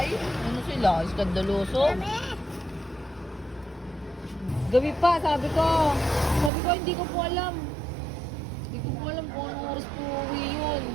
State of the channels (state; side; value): drops out; left; at 6.5 s